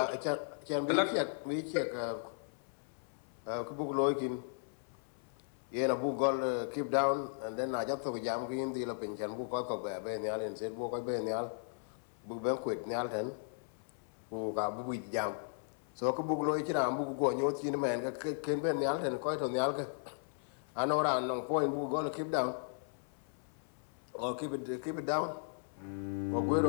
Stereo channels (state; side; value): silent; right; 53 dB below the other